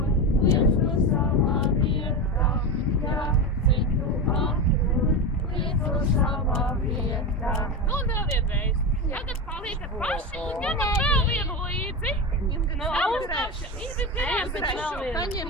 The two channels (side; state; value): both; normal; correlation 0.19